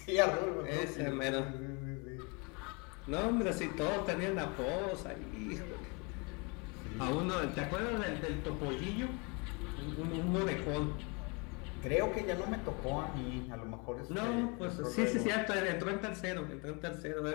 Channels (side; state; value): right; quieter; 30.9 dB